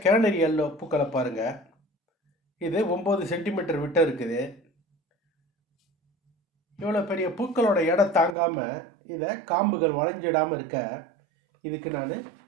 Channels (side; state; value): left; drops out; at 8.3 s